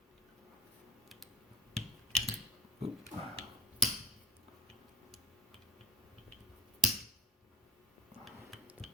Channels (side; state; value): both; normal; correlation 0.43